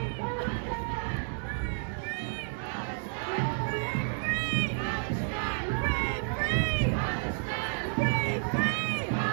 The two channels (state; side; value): silent; left; 57 dB below the other